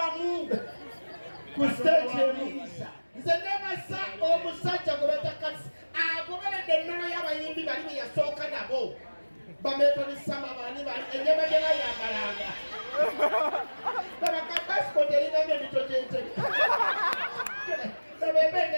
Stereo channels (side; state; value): both; inverted; correlation -1.00